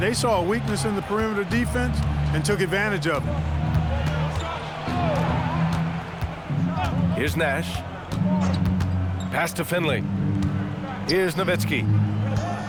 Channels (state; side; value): identical; both; correlation 1.00